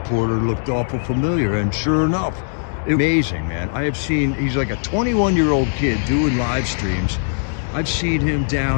looked awful familiar, and sure enough, it was amazing, man. He's like a 21-year-old kid doing live streams. I've seen him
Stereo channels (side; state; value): right; silent; digital silence